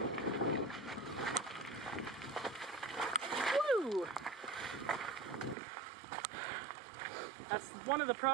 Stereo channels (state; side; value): drops out; left; at 5.6 s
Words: Woo! That's one of the